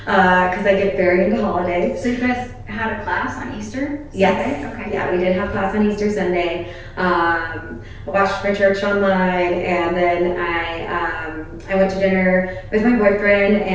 because I get very into holidays. So you guys had a class on Easter? Yes. Sunday? Okay. Yeah, we did have class on Easter Sunday. I watched my church online, and then I went to dinner with my boyfriend,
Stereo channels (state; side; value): identical; both; correlation 1.00